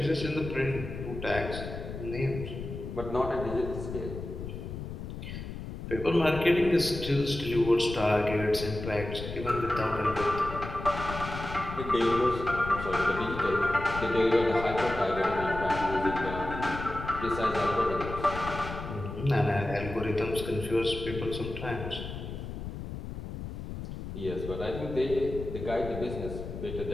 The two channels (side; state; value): left; noise; rumble, 8 dB below the sound